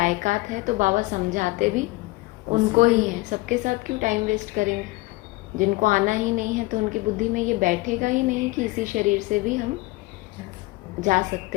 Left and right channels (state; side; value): quieter; right; 21.7 dB